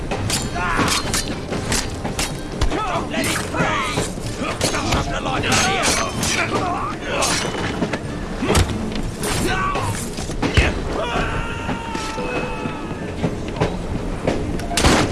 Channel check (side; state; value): both; identical; correlation 1.00